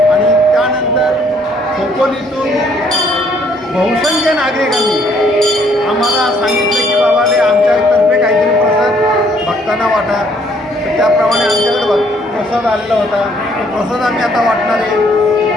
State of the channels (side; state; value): both; normal; correlation 0.65